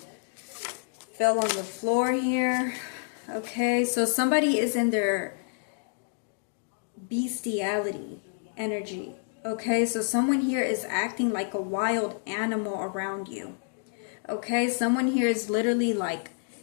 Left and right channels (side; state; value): right; silent; digital silence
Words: fell on the floor here. Okay, so somebody is in their bestiality energy. Okay, so someone here is acting like a wild animal around you. Okay, someone here is literally like